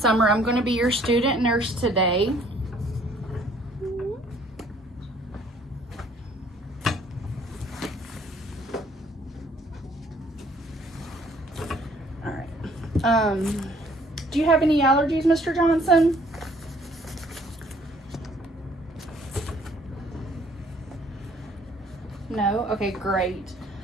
I'm going to be your student nurse today. All right. Do you have any allergies, Mr. Johnson? No? Okay, great.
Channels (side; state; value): both; normal; correlation 0.60